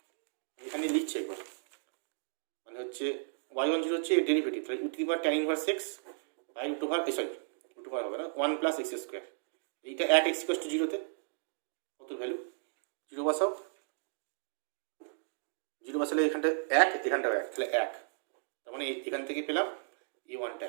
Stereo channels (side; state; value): left; silent; digital silence